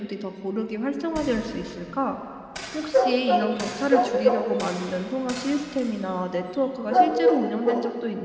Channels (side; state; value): both; identical; correlation 1.00